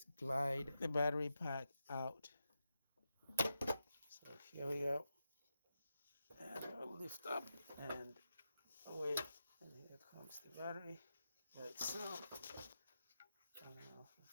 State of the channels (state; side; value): inverted; both; correlation -0.88